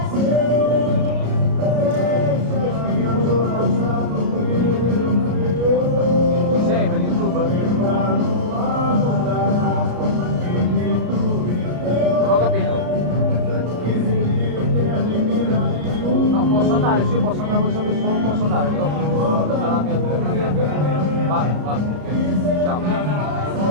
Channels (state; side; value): late; left; 33 ms